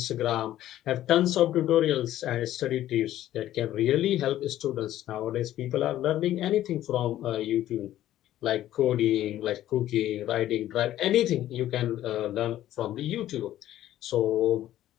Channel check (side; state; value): right; quieter; 13.1 dB